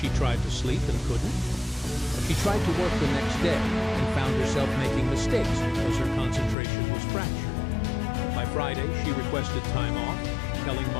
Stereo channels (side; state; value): right; drops out; at 6.6 s